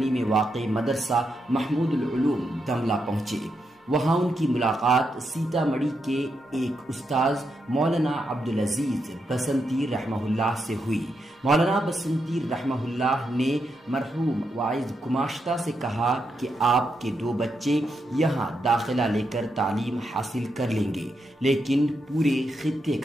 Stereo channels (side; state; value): both; normal; correlation 0.83